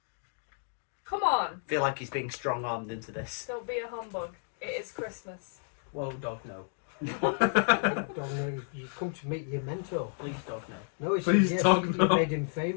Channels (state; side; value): silent; right; digital silence